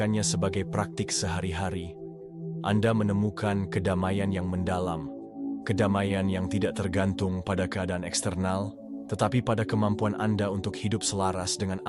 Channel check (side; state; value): both; identical; correlation 1.00